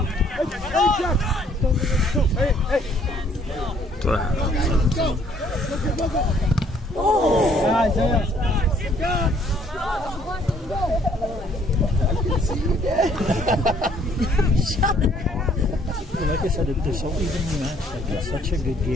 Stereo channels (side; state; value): both; normal; correlation 0.63